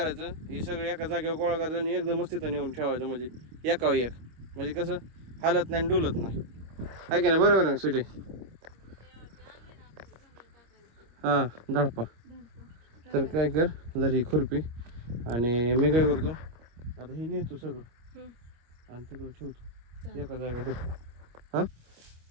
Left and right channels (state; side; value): late; left; 25 ms